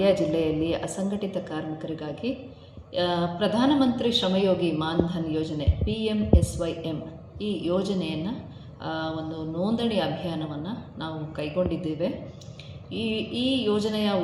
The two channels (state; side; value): identical; both; correlation 1.00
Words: ಜಿಲ್ಲೆಯಲ್ಲಿ ಅಸಂಘಟಿತ ಕಾರ್ಮಿಕರಿಗಾಗಿ ಪ್ರಧಾನಮಂತ್ರಿ ಶ್ರಮಯೋಗಿ ಮಾನ್ಧನ್ ಯೋಜನೆ PMSYM ಈ ಯೋಜನೆಯನ್ನು ಒಂದು ನೋಂದಣಿ ಅಭಿಯಾನವನ್ನು ನಾವು ಕೈಗೊಂಡಿದ್ದೇವೆ. ಈ ಯೋಜನೆಯ